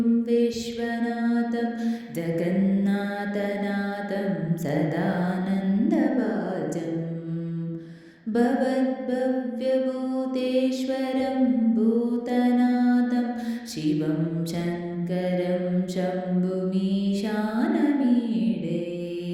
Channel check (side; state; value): both; identical; correlation 1.00